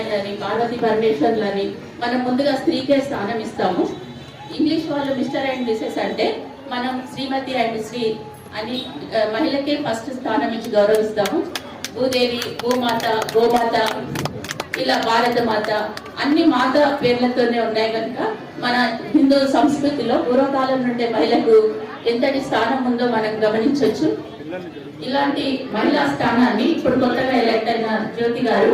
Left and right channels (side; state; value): both; identical; correlation 1.00